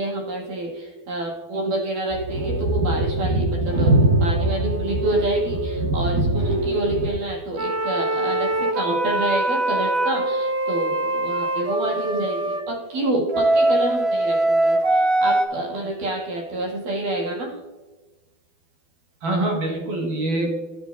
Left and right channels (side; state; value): left; late; 12 ms